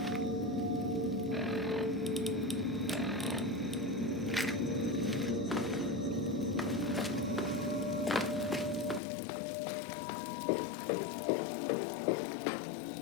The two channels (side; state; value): right; drops out; at 9.0 s